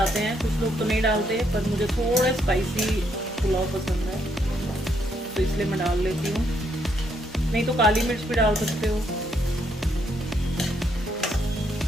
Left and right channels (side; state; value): both; normal; correlation 0.74